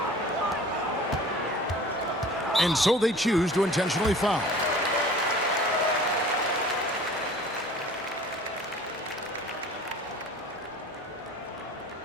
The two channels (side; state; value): both; normal; correlation 0.45